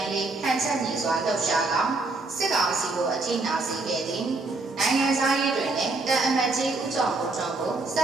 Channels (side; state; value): left; quieter; 3.4 dB